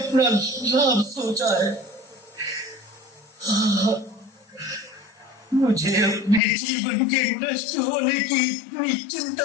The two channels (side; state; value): right; drops out; at 6.4 s